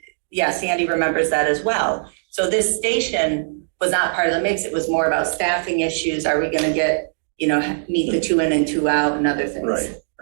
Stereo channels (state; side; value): silent; left; digital silence